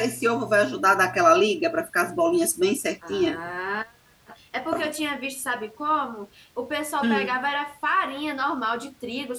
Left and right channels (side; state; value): both; identical; correlation 1.00